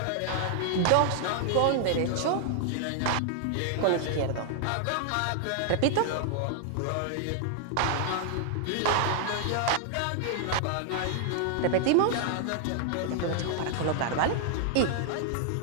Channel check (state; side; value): different; both; correlation 0.00